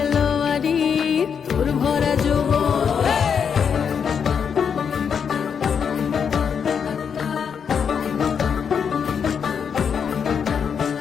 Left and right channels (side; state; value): right; quieter; 7.0 dB